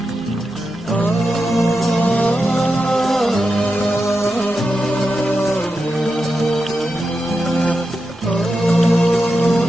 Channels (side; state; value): both; normal; correlation 0.89